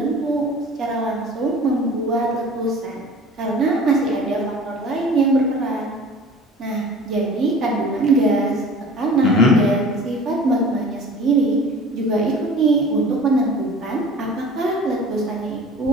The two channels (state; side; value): normal; both; correlation 0.43